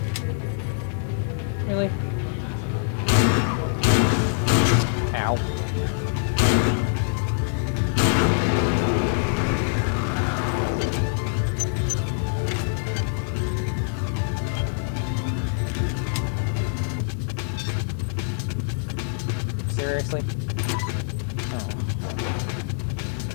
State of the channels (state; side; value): silent; right; digital silence